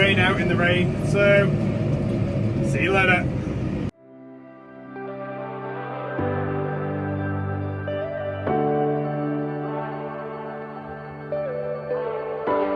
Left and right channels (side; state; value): both; identical; correlation 1.00